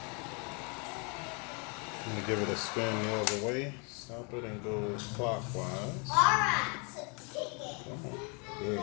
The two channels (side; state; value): right; quieter; 34.1 dB